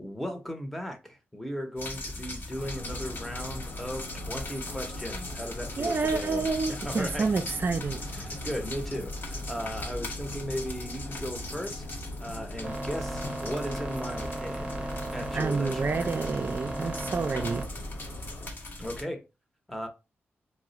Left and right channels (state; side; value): normal; both; correlation 0.80